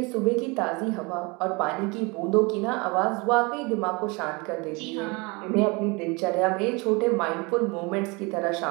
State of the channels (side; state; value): left; quieter; 27.7 dB